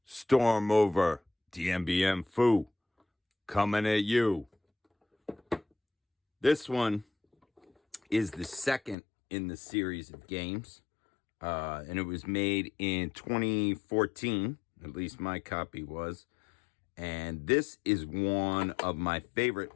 Storm Over Dien Bien Phu, coming at you. This one is the second in the series of games, and it was made in 2014. At least my copy was. And this is one of my favorite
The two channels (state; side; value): drops out; right; at 9.0 s